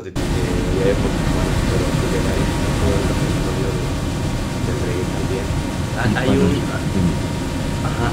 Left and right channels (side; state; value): both; identical; correlation 1.00